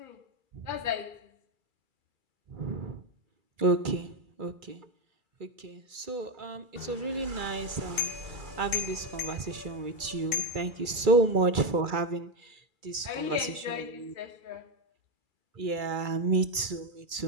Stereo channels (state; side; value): late; left; 2.3 ms